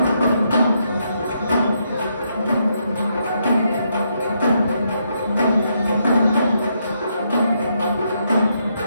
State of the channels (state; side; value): inverted; both; correlation -0.78